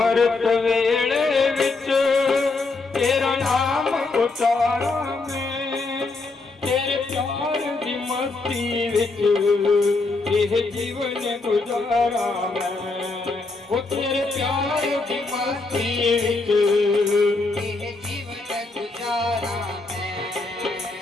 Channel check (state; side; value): quieter; right; 3.6 dB